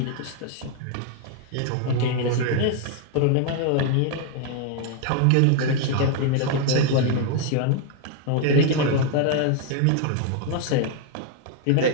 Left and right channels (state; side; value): different; both; correlation 0.00